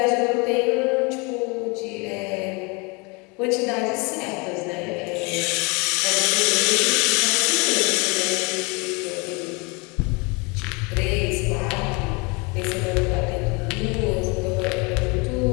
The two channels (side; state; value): right; quieter; 29.1 dB